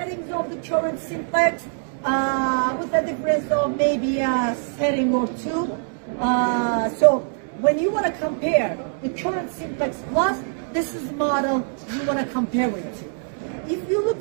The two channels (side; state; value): left; silent; 60 dB below the other